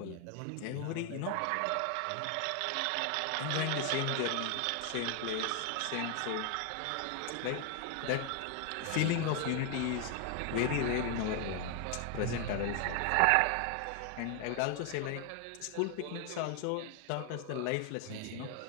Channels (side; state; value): both; different; correlation 0.01